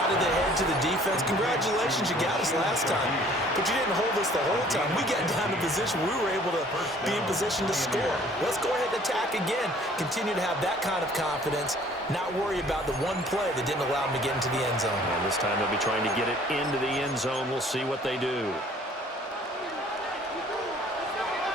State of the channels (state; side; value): normal; both; correlation 0.55